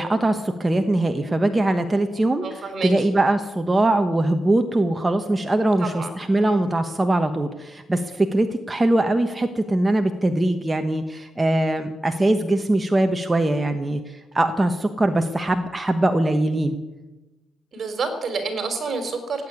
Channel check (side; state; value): both; normal; correlation 0.94